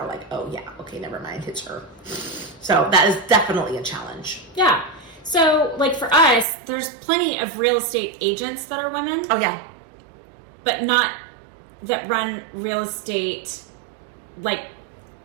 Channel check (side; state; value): left; drops out; at 6.5 s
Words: like, oh yeah, okay, never mind, it's her. So that is definitely a challenge. Yeah. So like for us, there's plenty of real estate agents that are women. Oh yeah. But not that run real estate like